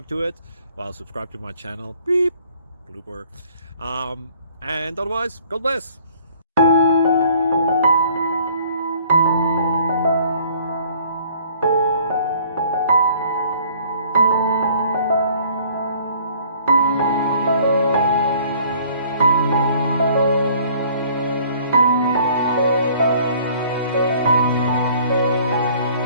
to it. Well, subscribe to my channel. Beep. Blooper. And otherwise, God bless.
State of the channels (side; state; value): both; inverted; correlation -0.56